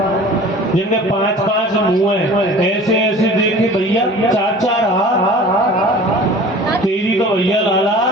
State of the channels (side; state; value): both; normal; correlation 0.43